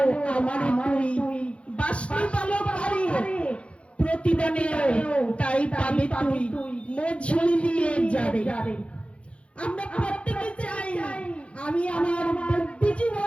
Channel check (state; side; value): late; right; 0.060 ms